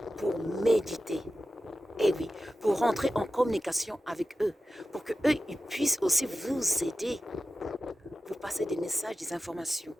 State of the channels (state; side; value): normal; both; correlation 0.92